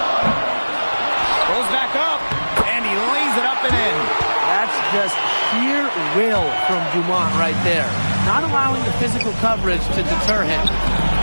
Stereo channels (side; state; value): both; inverted; correlation -1.00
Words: Goes back up, and he lays it up and in. That's just sheer will from Dumont right there. Not allowing the physical coverage to deter him.